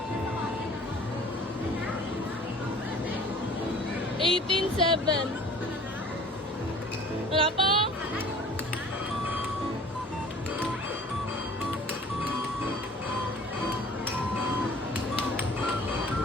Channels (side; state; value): both; normal; correlation 0.48